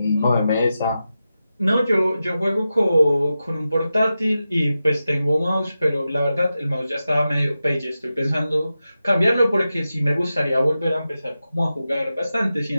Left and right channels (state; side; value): inverted; both; correlation -0.91